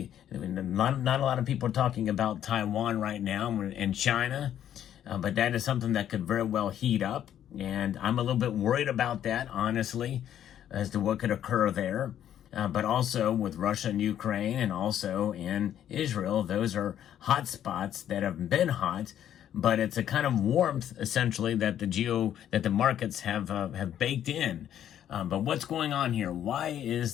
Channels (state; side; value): quieter; right; 10.5 dB